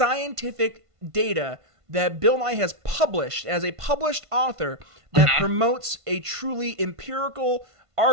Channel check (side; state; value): left; late; 1.5 ms